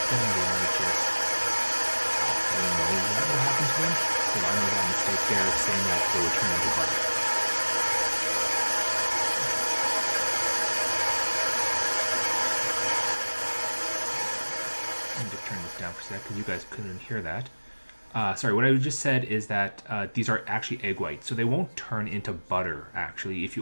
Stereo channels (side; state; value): both; inverted; correlation -1.00